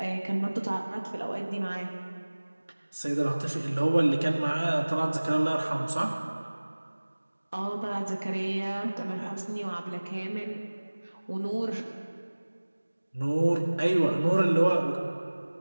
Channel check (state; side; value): inverted; both; correlation -1.00